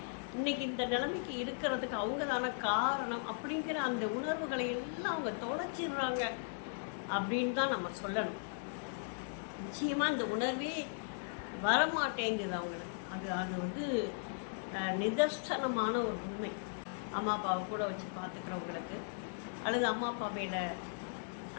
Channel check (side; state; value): right; silent; digital silence